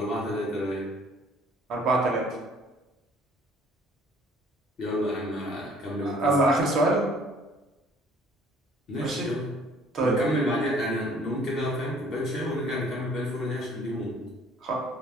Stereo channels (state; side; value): normal; both; correlation 0.56